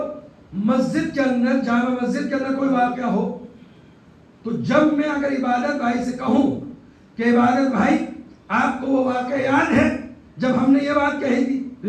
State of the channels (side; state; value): both; identical; correlation 1.00